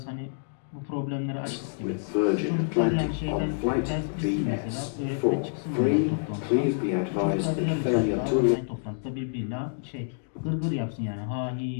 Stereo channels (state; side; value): silent; right; digital silence